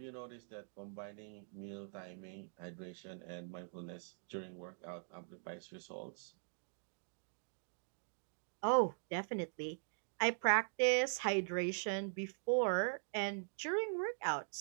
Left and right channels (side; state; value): left; silent; digital silence